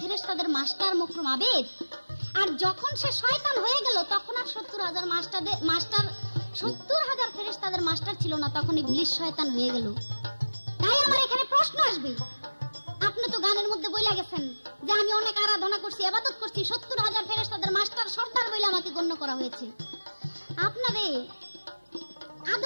ফেরেশতাদের মাস্টার মকরুম আবেদ। আর যখন সে শয়তান হয়ে গেল তখন আর 70,000 ফেরেশতাদের মাস্টার ছিল না, তখন ইবলিস শয়তান হয়ে গেল। তাই আমার এখানে প্রশ্ন আসবে, আপনি তো গানের মধ্যে বইলা গেছেন যে আমি অনেক আরাধনা করছি, ইবাদত করছি, 70,000 ফেরেশতাদের মাস্টার সর্দার বলে আমাকে গণ্য করা হয়েছে। আপনারে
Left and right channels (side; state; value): both; inverted; correlation -1.00